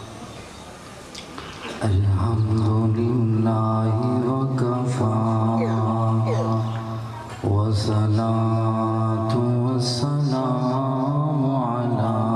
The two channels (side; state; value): both; identical; correlation 1.00